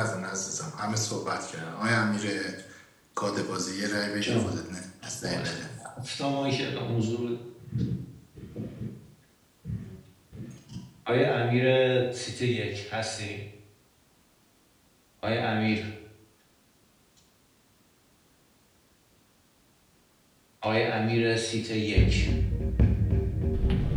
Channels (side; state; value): both; identical; correlation 1.00